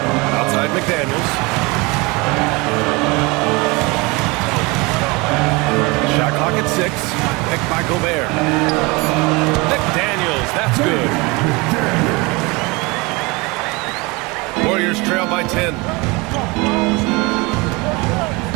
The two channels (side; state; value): left; quieter; 25.7 dB